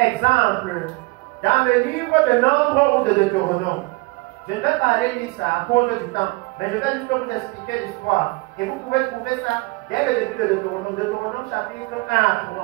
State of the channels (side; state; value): left; quieter; 25.3 dB